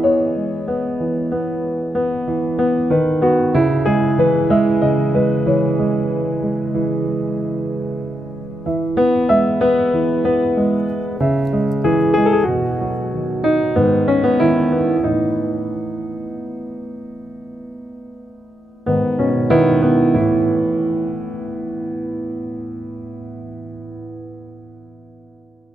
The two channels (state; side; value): normal; both; correlation 0.86